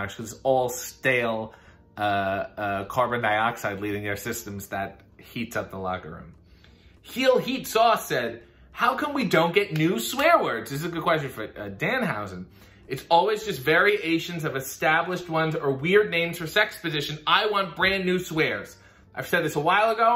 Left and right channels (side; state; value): both; identical; correlation 1.00